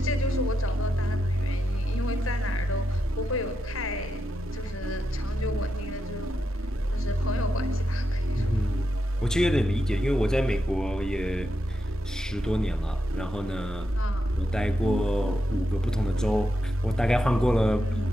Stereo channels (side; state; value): both; normal; correlation 0.85